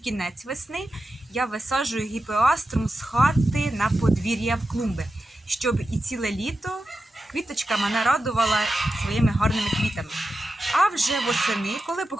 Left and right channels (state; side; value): normal; both; correlation 0.91